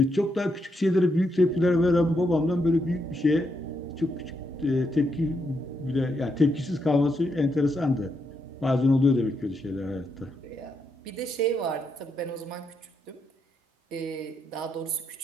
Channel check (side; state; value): both; normal; correlation 0.80